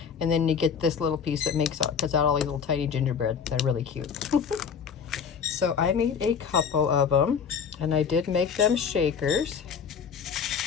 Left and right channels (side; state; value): right; quieter; 6.7 dB